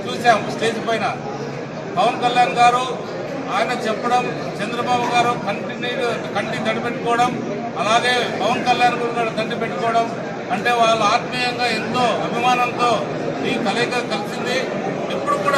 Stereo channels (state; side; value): identical; both; correlation 1.00